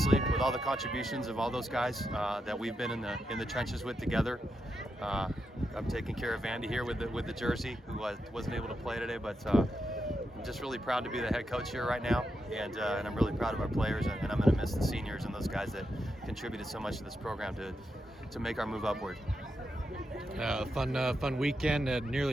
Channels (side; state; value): both; normal; correlation 0.85